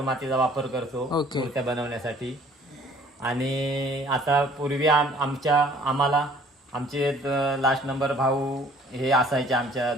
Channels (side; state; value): both; normal; correlation 0.55